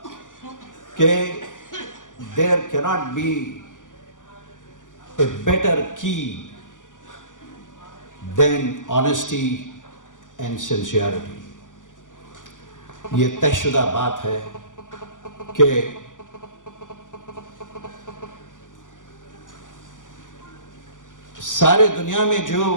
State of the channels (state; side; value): late; right; 0.87 ms